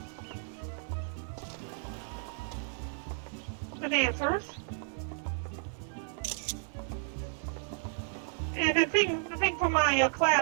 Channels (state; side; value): silent; left; 56 dB below the other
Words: The dancers. And the thing from my